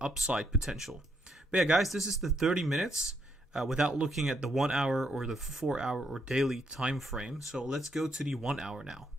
potential. But yeah, guys, this is the 30 minutes without looking at the 1 hour or the 4 hour or daily time frame. So let's go to the 1 hour now.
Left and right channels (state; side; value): normal; both; correlation 0.75